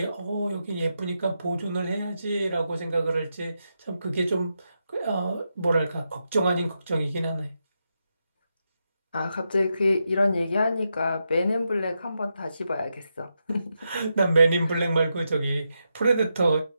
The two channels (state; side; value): inverted; both; correlation -0.85